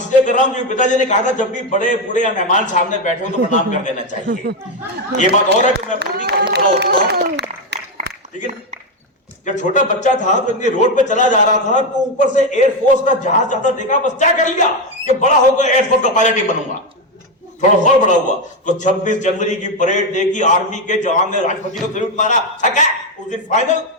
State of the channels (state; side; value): normal; both; correlation 0.08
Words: कर रहा हूं क्योंकि पिताजी ने कहा था जब भी बड़े बूढ़े या मेहमान सामने बैठे हो तो प्रणाम कर देना चाहिए। ये बात और है कि मैं पूरी काफी बड़ा होता हूं, लेकिन जब छोटा बच्चा था तो इनके रोड पे चला जा रहा था तो ऊपर से एयरफोर्स का जहाज जाता देखा। बस क्या कर लिया कि बड़ा होकर एयरफोर्स का पायलट ही बनूंगा। थोड़ा और बड़ा हुआ तो 26 जनवरी की परेड देखी, आर्मी के जवान ने राष्ट्रपति को सैल्यूट मारा। उस दिन फाइनल